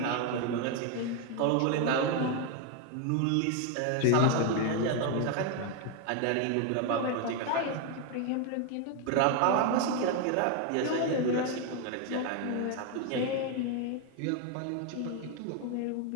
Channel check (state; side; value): different; both; correlation 0.01